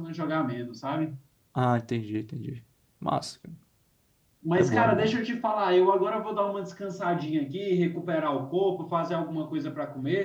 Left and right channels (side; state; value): both; identical; correlation 1.00